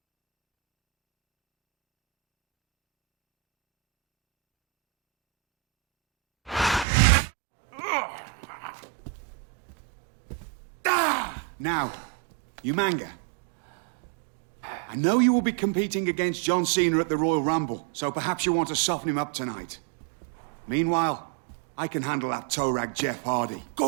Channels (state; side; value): drops out; left; at 6.9 s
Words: Now, Umanga, I know you will be competing against John Cena at the Royal Rumble, so perhaps you want to soften him up tonight. Meanwhile, I can handle that toe rag Jeff Hardy.